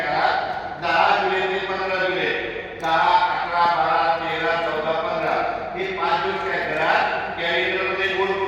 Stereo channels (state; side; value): identical; both; correlation 1.00